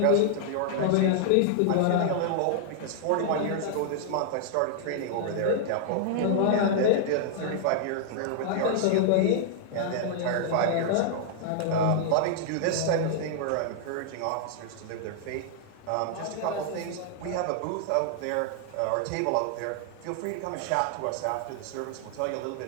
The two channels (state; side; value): different; both; correlation -0.01